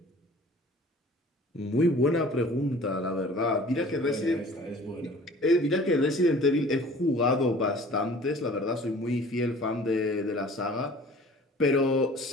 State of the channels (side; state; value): both; normal; correlation 0.47